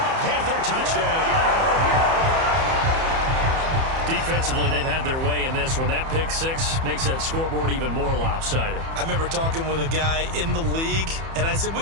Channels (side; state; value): left; late; 30 ms